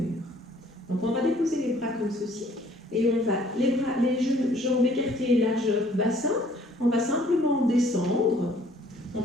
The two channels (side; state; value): both; normal; correlation 0.58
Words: Donc on va déposer les bras comme ceci et on va les jambes écartées largeur bassin. On va simplement descendre. On